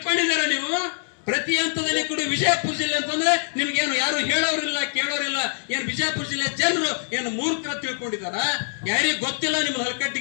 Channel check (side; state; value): right; silent; digital silence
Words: ನೀವು ಪ್ರತಿ ಹಂತದಲ್ಲಿ ಕೂಡ ವಿಜಯಪುರ ಜಿಲ್ಲೆ ಅಂತಂದ್ರೆ ನಿಮ್ಗೇನು ಯಾರು ಹೇಳೋರಿಲ್ಲ, ಕೇಳೋರಿಲ್ಲ. ಏನ್ ವಿಜಯಪುರ ಜಿಲ್ಲೆ ಜನರು ಏನು ಮೂರ್ಖರ ತಿಳ್ಕೊಂಡಿದಾರ? ಯಾರಿಗೆ ಗೊತ್ತಿಲ್ಲ ನಿಮ್ಗೆ